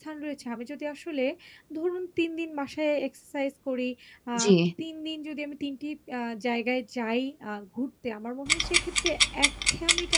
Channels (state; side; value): identical; both; correlation 1.00